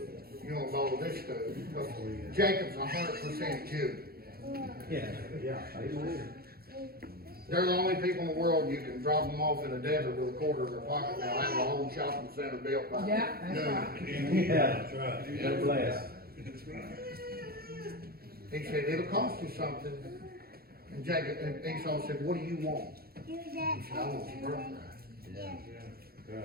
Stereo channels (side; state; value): left; late; 0.44 ms